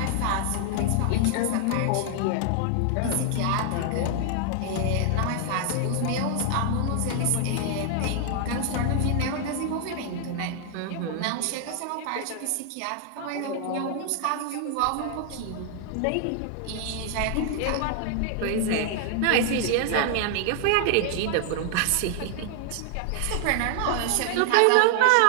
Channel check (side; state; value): both; different; correlation 0.00